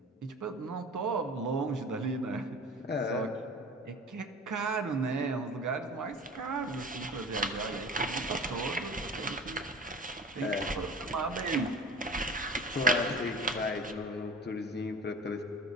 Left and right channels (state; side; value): normal; both; correlation 0.38